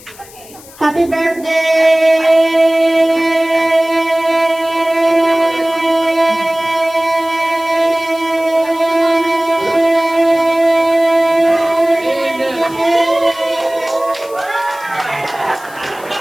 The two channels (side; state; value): left; noise; hiss, 21 dB below the sound